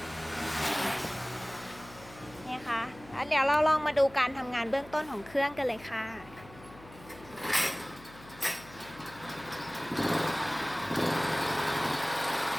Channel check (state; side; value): noise; left; hum, 20 dB below the sound